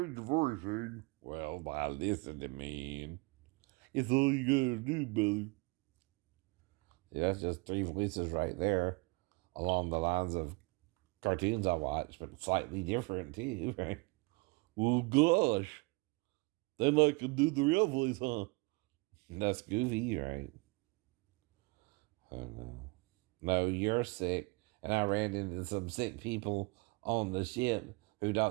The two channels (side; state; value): left; quieter; 27.6 dB